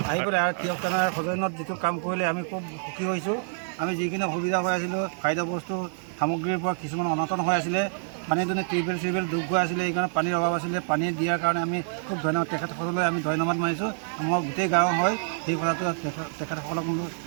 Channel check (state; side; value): silent; left; digital silence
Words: আহি পেলাই আৰু তিয়ক থানাৰ সদনত যিটো কাম কৰিলে আমি খুব সুখী হৈছোঁ। আমি যিখিনি অসুবিধা হৈ আছিলোঁ, খাদ্য বস্তু সামগ্ৰীৰ পৰা কিছুমান অনাটন হৈ আছিলে, পানী দুনে টিউবেল ডুব গৈ আছিলে, এইকাৰণে পানীৰ অভাৱ আছিলে। পানী দিয়াৰ কাৰণে আমি খুব ধন্যবাদ তেখেতসকললৈ আমি ধন্যবাদ মানিছোঁ। আমাৰ গোটেই গাঁও হয় সেই কথাটো তেখেতসকলক